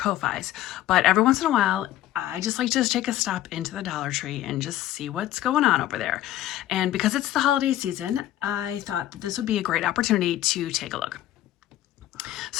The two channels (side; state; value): right; quieter; 13.7 dB